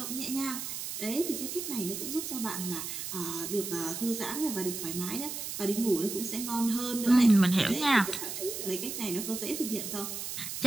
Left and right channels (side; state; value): right; noise; hiss, 5 dB below the sound